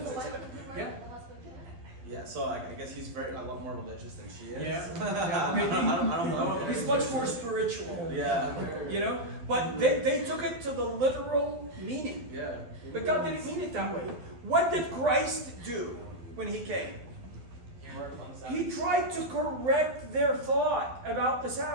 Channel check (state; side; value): late; left; 12 ms